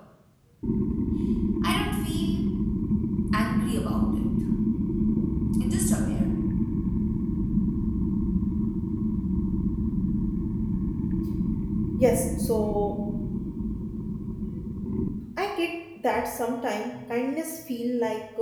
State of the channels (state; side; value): identical; both; correlation 1.00